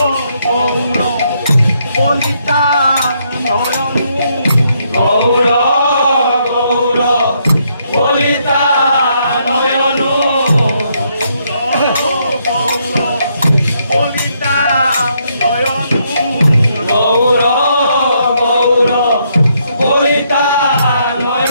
গৌর বলিতা নয়ন গৌর গৌর বলিতা নয়ন গৌর গৌর বলিতা নয়ন গৌর গৌর বলিতা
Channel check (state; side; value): inverted; both; correlation -0.74